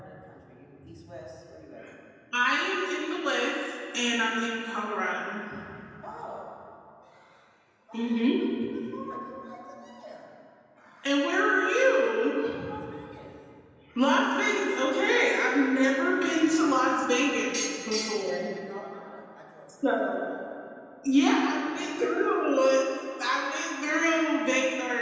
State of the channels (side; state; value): both; identical; correlation 1.00